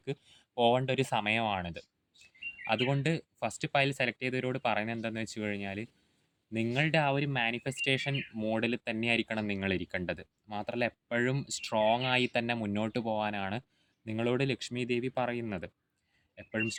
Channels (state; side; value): identical; both; correlation 1.00